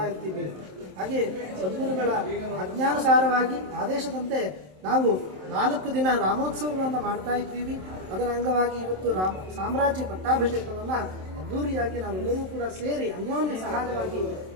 ಇರ್ತೀವಿ. ಹಾಗೆ ಸದ್ಗುರುಗಳ ಆಜ್ಞಾನುಸಾರವಾಗಿ ಆದೇಶದಂತೆ ನಾವು 4 ದಿನ ರಾಮೋತ್ಸವವನ್ನು ಮಾಡ್ತಾ ಇದ್ದೀವಿ. ಅದರ ಅಂಗವಾಗಿ ಇವತ್ತು ಸಾಮ್ರಾಜ್ಯ ಪಟ್ಟಾಭಿಷೇಕವನ್ನು ಅದ್ದೂರಿಯಾಗಿ ನಾವೆಲ್ಲರೂ ಕೂಡ ಸೇರಿ ಅನ್ಯೋನ್ಯ ಸಹಾಯವಾಗಿ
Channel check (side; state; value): left; late; 27 ms